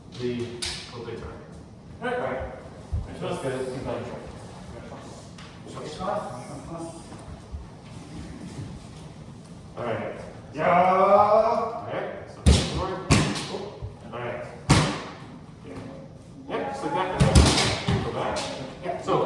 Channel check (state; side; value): identical; both; correlation 1.00